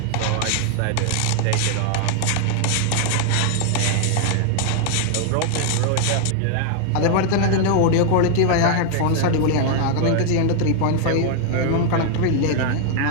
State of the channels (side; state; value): both; different; correlation 0.00